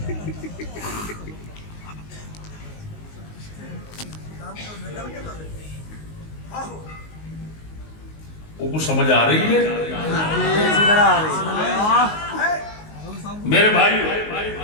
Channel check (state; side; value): late; right; 19 ms